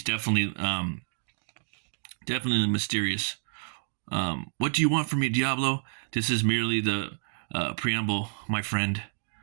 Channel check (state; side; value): silent; left; digital silence